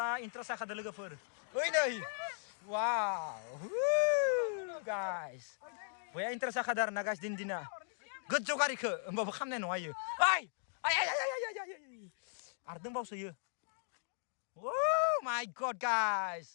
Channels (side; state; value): right; silent; digital silence